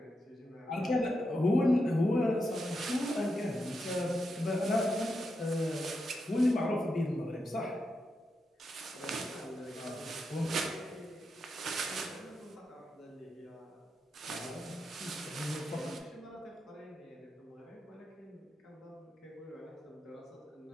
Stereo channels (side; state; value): both; normal; correlation 0.86